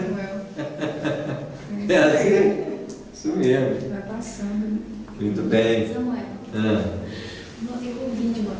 É assim? Isso mesmo. Vai passando. Muito bem. Samuel, eu ouvi de uma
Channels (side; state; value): both; identical; correlation 1.00